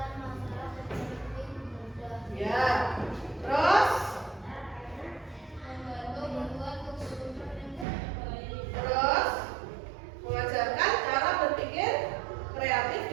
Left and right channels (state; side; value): drops out; left; at 7.9 s